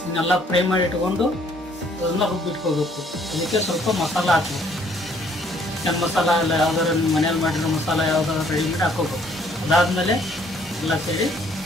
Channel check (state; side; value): normal; both; correlation 0.63